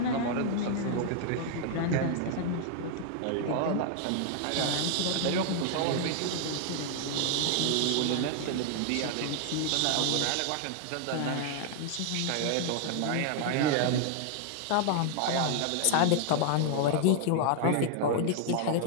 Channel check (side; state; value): both; different; correlation 0.00